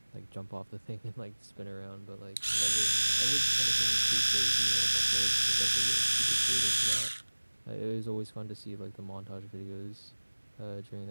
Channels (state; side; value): inverted; both; correlation -1.00